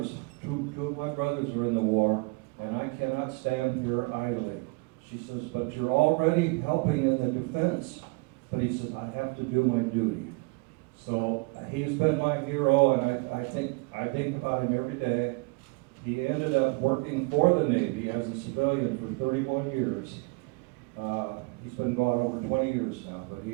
two of my brothers are in the war, and I cannot stand here idly." She says, "But you're already helping in the defense." But he said, "I have to do my duty." So he's been my hero, and I think about him every day. He ended up working for the Navy as a civilian for 31 years. He's been gone over 20 years now, but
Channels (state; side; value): quieter; left; 28.5 dB